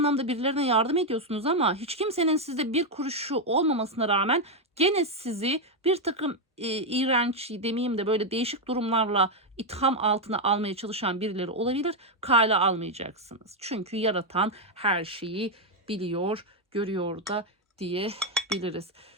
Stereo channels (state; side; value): normal; both; correlation 0.03